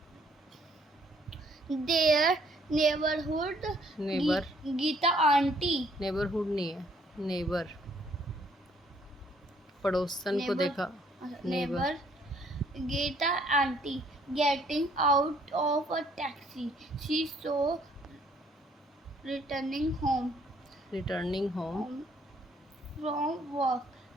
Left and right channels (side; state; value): both; normal; correlation 0.64